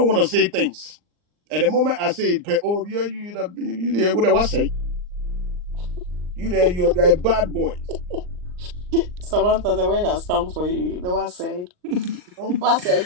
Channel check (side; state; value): left; late; 39 ms